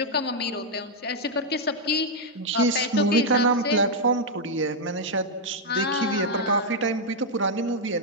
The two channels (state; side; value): normal; both; correlation -0.02